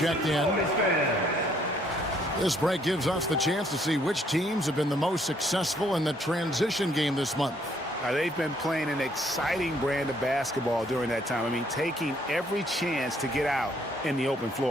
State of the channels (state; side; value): normal; both; correlation 0.66